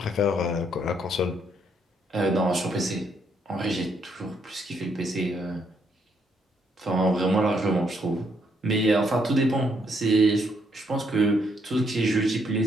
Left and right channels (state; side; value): normal; both; correlation 0.73